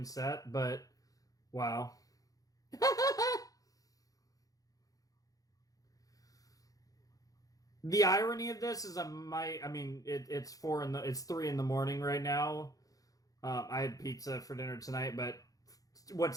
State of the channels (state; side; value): late; right; 0.17 ms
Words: but wow. The irony of this is it's 3 in the morning right now. I had pizza for dinner tonight, but